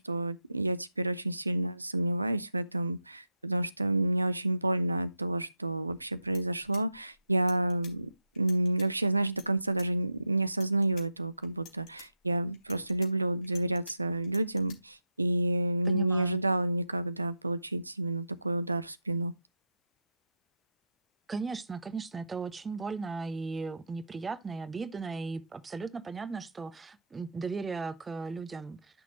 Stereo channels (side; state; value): both; inverted; correlation -0.80